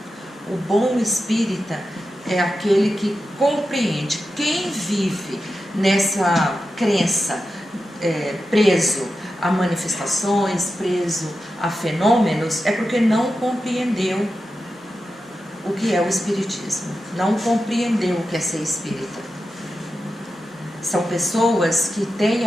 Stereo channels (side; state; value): both; normal; correlation 0.90